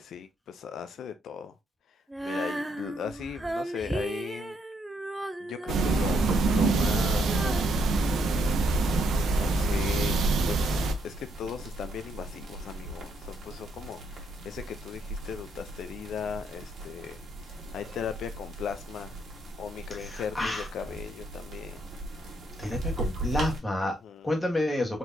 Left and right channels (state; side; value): normal; both; correlation 0.74